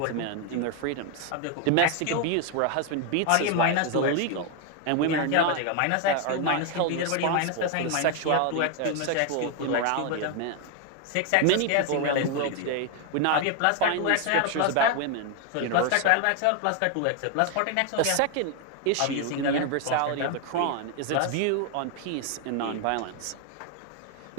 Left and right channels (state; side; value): different; both; correlation 0.01